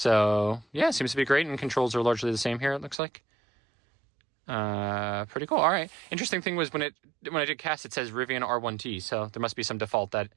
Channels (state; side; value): drops out; left; at 3.0 s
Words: yeah, it seems to be great, and controls are largely the same here, it looks like. Pretty cool. All right. Interesting thing was when I did cast, it says Rivian R1T, so there must be some default that